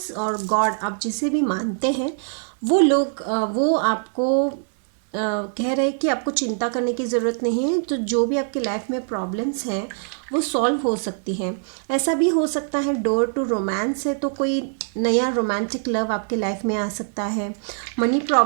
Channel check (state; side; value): silent; left; digital silence